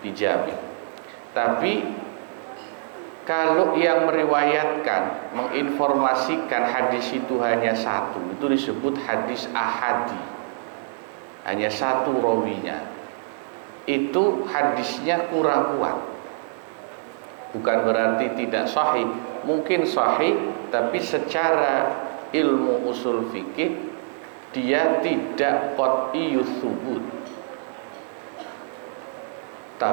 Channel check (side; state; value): left; silent; digital silence